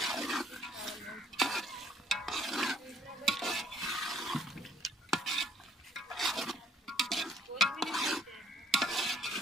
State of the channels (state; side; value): normal; both; correlation 0.61